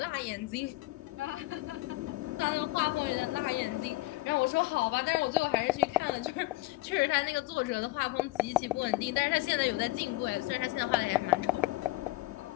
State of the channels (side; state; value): right; quieter; 19.6 dB